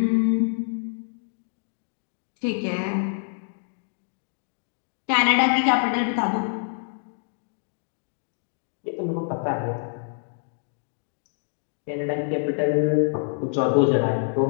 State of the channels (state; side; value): silent; right; digital silence